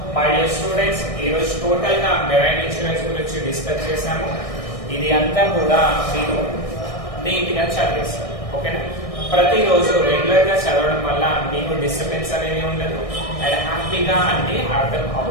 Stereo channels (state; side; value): late; right; 1.6 ms